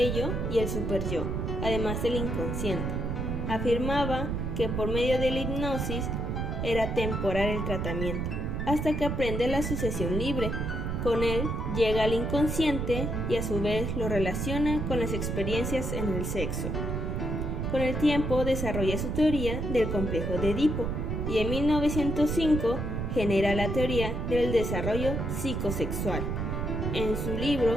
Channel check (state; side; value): noise; right; rumble, 2 dB below the sound